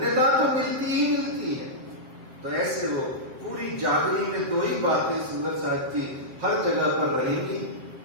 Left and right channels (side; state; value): left; late; 7.5 ms